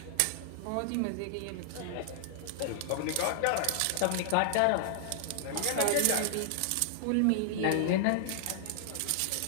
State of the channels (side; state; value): both; different; correlation -0.01